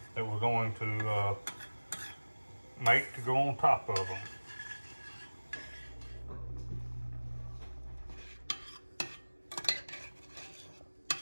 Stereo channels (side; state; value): both; inverted; correlation -1.00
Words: that we're going to make to go on top of them.